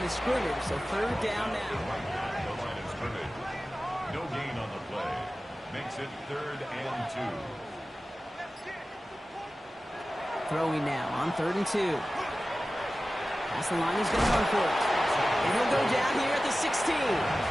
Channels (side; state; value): both; normal; correlation 0.96